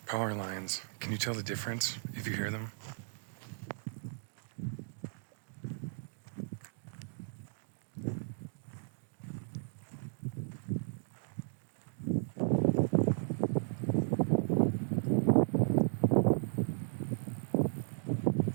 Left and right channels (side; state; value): left; silent; digital silence